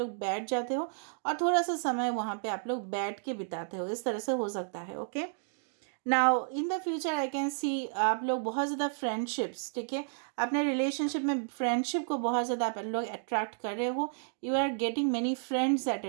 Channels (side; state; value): left; silent; digital silence